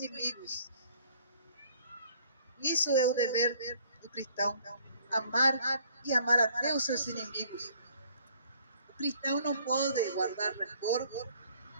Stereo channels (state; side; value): inverted; both; correlation -0.60